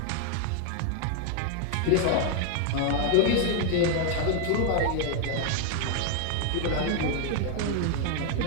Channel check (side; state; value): both; different; correlation 0.00